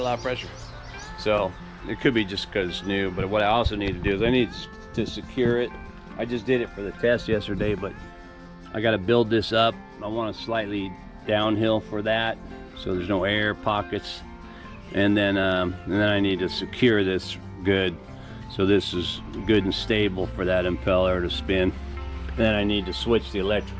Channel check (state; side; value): identical; both; correlation 1.00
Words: a lot of pressure. So it could be just because it's new, but what I also need to do is I need to secure it. I just did it for the test yesterday, but I got to build this up. I want to slightly downhill for that, so there's no air pockets, and then I need to secure this good, so this is good and stable for that impeller to spin. And then I need to switch the